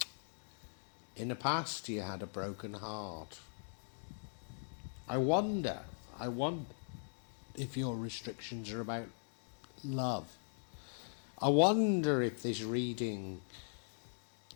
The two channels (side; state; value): right; silent; digital silence